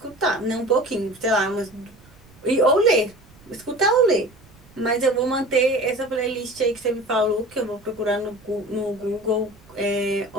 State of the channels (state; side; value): noise; right; rumble, 26 dB below the sound